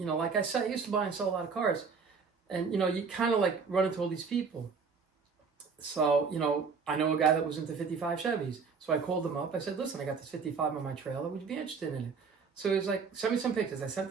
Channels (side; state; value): left; quieter; 5.3 dB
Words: I said, I used to buy and sell a lot of cars. And, you kind of like run into all these people. So, I know a guy that was into 55 Chevys. So I called him up. I said, listen, I got this 55 on my trailer. Would you be interested in it? So he's like, send me some pictures. I sent